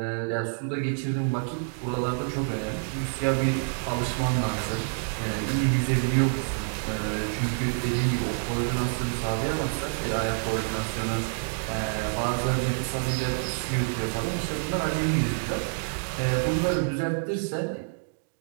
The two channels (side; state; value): left; silent; digital silence